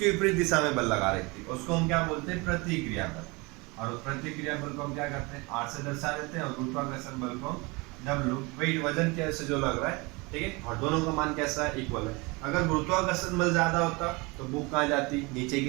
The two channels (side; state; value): left; quieter; 26.2 dB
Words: विपरीत दिशा में बल लगा रही थी, उसको हम क्या बोलते हैं, प्रतिक्रिया बल। और प्रतिक्रिया बल को हम क्या करते हैं, R से दर्शा देते हैं, और गुरुत्वाकर्षण बल को W, वेट, वजन के से जो लग रहा है। ठीक है, और दोनों का मान कैसा है, इक्वल है। अगर गुरुत्वाकर्षण बल ज्यादा होता तो बुक कहाँ जाती, नीचे